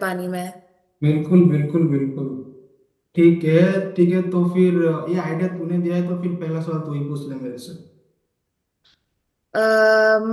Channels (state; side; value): identical; both; correlation 1.00